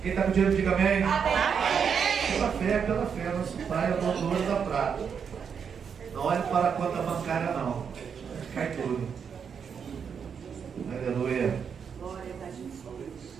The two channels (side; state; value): left; quieter; 6.9 dB